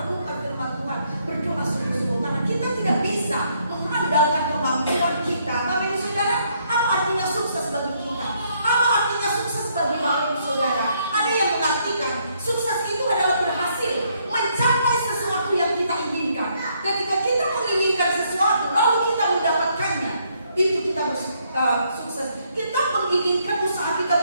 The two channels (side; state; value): both; inverted; correlation -0.71